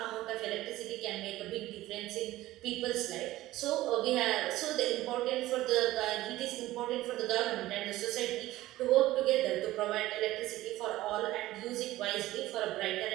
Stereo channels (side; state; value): left; quieter; 16.4 dB